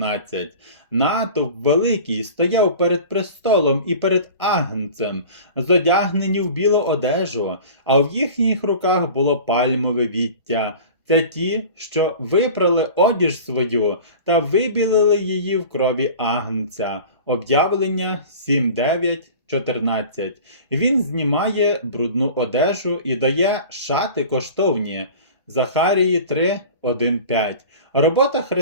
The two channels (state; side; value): inverted; both; correlation -0.39